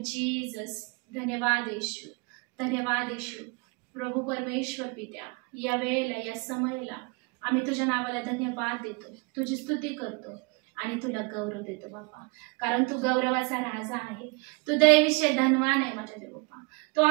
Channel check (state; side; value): quieter; left; 30.0 dB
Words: Jesus. धन्यवाद येशू, धन्यवाद येशू. प्रभू परमेश्वर पित्या, या वेळेला, या समयाला आम्ही तुझ्या नावाला धन्यवाद देतो, तुझी स्तुती करतो आणि तुला गौरव देतो बापा. कारण तू गौरवाचा राजा आहे, तू दयेविषयी धनवान आहे माझ्या देवबापा. तू